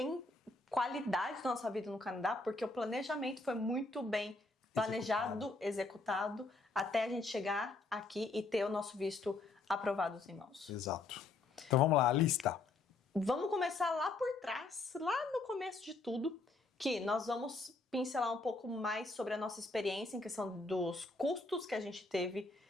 qualidade na nossa vida no Canadá porque o planejamento foi muito bem planejado, executado, até a gente chegar aqui e ter o nosso visto aprovado em mãos. Exato. Então vamos lá, a lista. Vamos começar lá por trás, lá no começo de tudo, que nós vamos pincelar um pouco mais sobre a nossa experiência em questão dos custos que a gente teve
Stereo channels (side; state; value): right; quieter; 3.4 dB